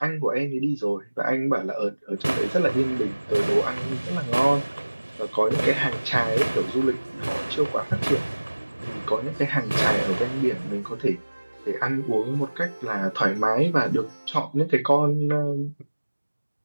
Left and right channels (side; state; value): both; inverted; correlation -1.00